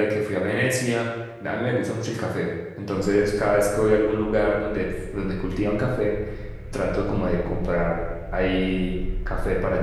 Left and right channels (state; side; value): identical; both; correlation 1.00